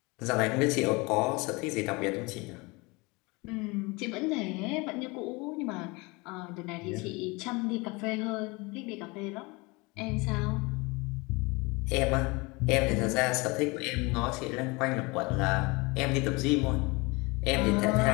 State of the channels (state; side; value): quieter; right; 25.9 dB